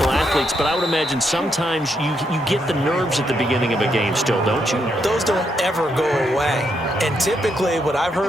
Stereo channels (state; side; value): normal; both; correlation 0.78